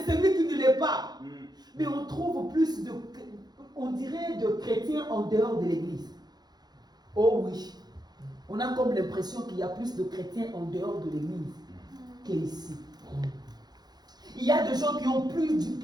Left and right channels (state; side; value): late; left; 0.20 ms